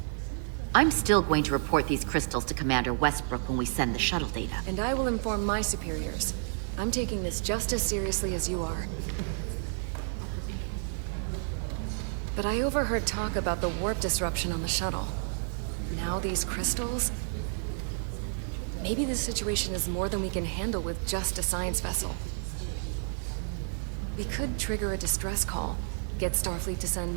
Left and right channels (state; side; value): silent; left; digital silence